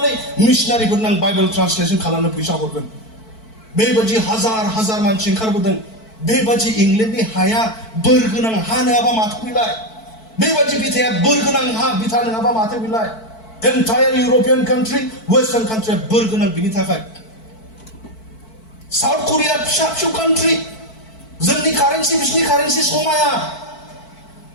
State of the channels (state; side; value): late; right; 4.5 ms